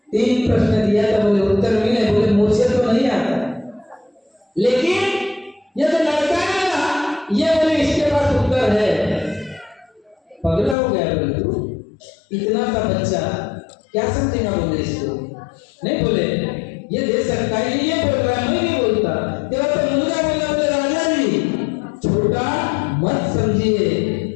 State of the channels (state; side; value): drops out; right; at 10.8 s